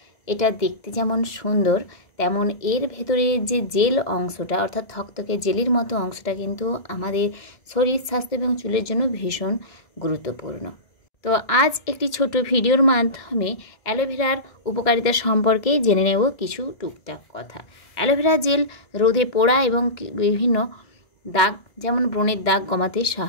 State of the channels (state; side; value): late; right; 1.7 ms